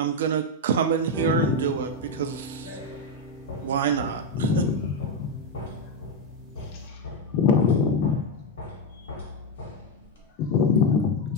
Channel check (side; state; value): both; normal; correlation 0.05